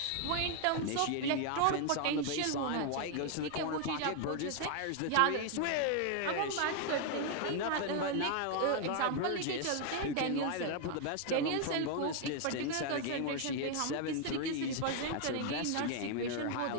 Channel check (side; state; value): both; different; correlation 0.00